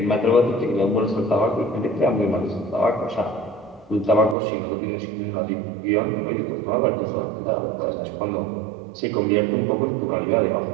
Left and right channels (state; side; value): drops out; left; at 4.4 s